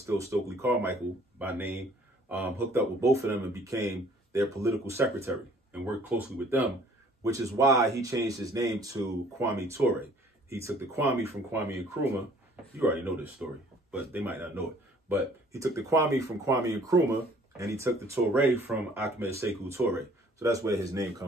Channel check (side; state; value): both; normal; correlation 0.56